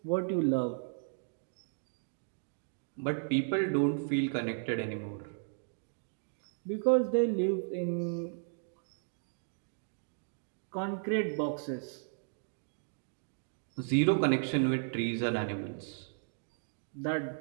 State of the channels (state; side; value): silent; left; digital silence